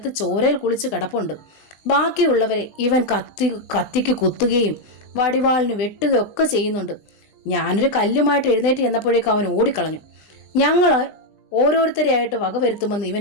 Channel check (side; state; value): right; late; 20 ms